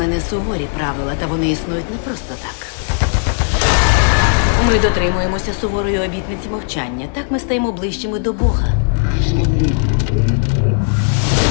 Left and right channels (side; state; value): right; silent; 57 dB below the other